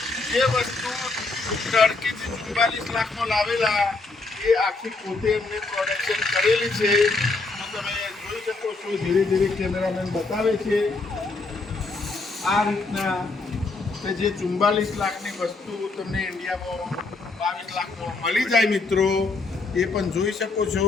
જે વસ્તુ ટર્કીથી 44 લાખમાં લાવેલા એ આખી પોતે એમને પ્રોડક્શન કરેલી છે. તો તમે જોઈ શકો છો ધીરે ધીરે કેમેરામેન બતાવે છે આ રીતના કે જે 44 લાખની વસ્તુ તમને ઇન્ડિયામાં 22 લાખમાં મળી જાય મિત્રો, એ પણ જોઈ શકો છો.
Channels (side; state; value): right; quieter; 3.6 dB